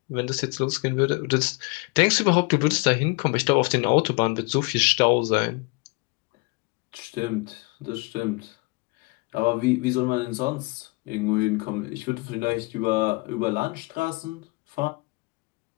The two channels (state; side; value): quieter; right; 27.1 dB